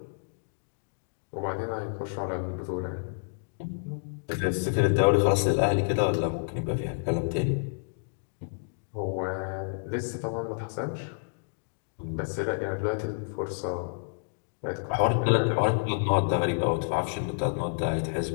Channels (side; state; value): right; silent; digital silence